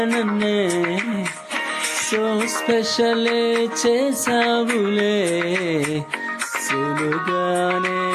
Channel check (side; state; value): both; identical; correlation 1.00